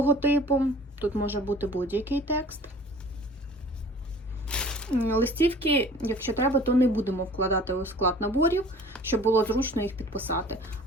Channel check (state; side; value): normal; both; correlation 0.48